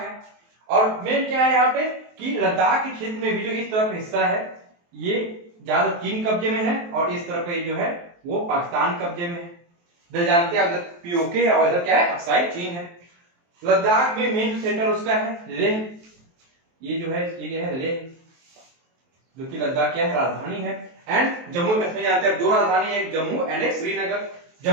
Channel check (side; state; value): left; late; 23 ms